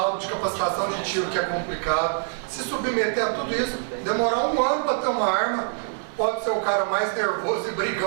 de capacitação de tiro que é complicado, se submeter a tudo isso, demorar 1 ano para ter uma arma. Pode ser o cara mais nervoso e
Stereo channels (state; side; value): silent; left; digital silence